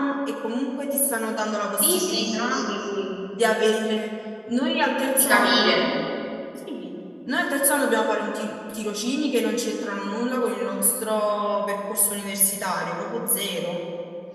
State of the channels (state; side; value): identical; both; correlation 1.00